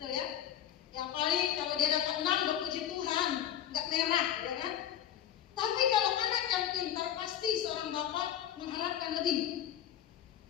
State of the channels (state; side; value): quieter; right; 10.7 dB